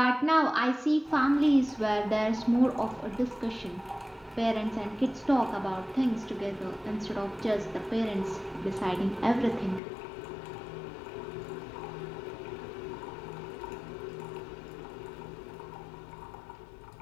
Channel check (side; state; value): right; drops out; at 9.8 s